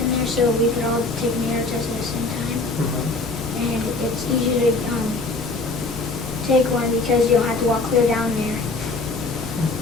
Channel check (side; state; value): right; quieter; 3.4 dB